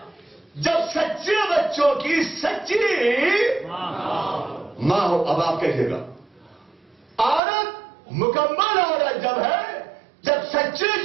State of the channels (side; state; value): left; drops out; at 7.4 s